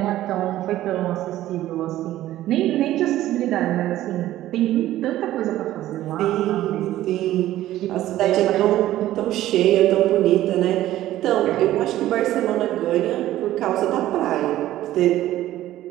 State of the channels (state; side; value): quieter; left; 14.2 dB